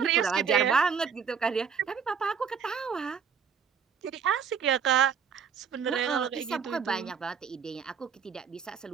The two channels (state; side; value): quieter; left; 6.6 dB